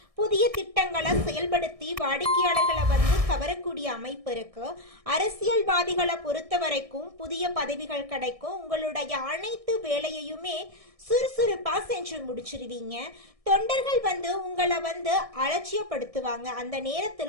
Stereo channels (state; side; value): late; left; 1.6 ms